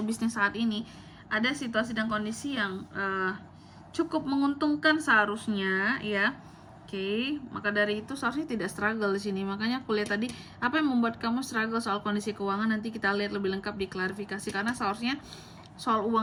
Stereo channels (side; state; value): both; identical; correlation 1.00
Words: bisnis saat ini, ada situasi dan kondisi yang cukup menguntungkan seharusnya ya. Oke, maka dari itu seharusnya tidak struggle di sini. Makanya aku lihat tadi apa yang membuat kamu struggle soal kondisi keuangan, nanti kita lihat lebih lengkap di klarifikasi, karena seharusnya soal